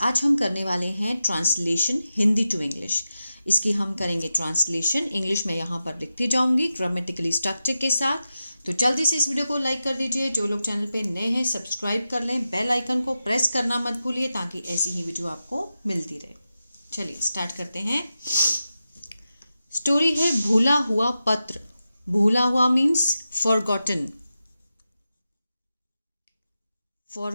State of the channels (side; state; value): both; inverted; correlation -0.91